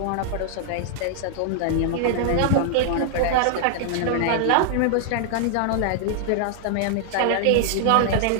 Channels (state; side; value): different; both; correlation -0.01